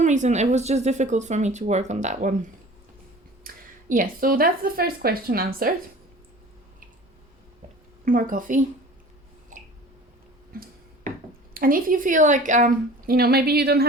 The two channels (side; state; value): both; normal; correlation 0.43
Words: reason, it was just difficult for me to work on that one. Yes, so that's the first question answered. More coffee. And if you feel like, you know, maybe you don't